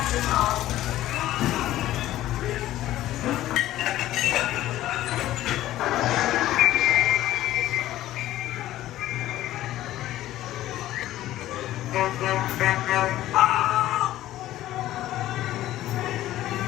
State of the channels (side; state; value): right; quieter; 14.4 dB